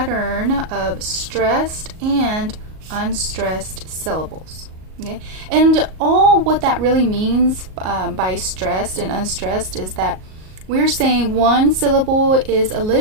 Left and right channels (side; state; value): left; late; 38 ms